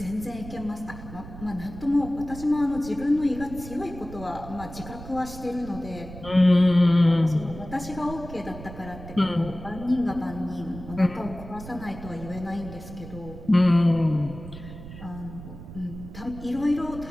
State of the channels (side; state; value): right; noise; rumble, 13 dB below the sound